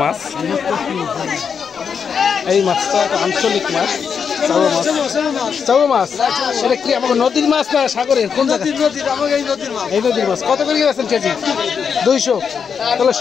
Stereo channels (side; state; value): right; quieter; 6.6 dB